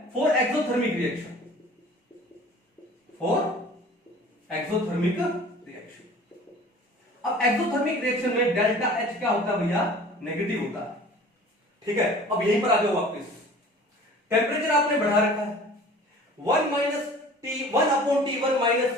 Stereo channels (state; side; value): normal; both; correlation 0.45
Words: for exothermic reaction, for exothermic reaction. अब एक्सोथर्मिक रिएक्शन में डेल्टा H क्या होता है भैया नेगेटिव होता है, ठीक है। अब यहीं पर आ जाओ वापस, टेम्परेचर आपने बढ़ा रखा है 1 minus T1 upon T1 minus